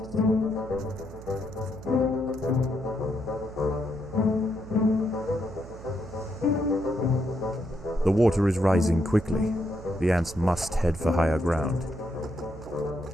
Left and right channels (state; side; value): noise; right; hum, 15 dB below the sound